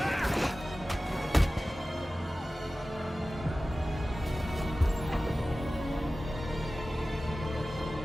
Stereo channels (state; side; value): normal; both; correlation 0.96